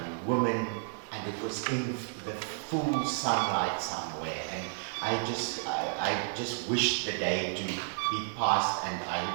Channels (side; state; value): left; silent; digital silence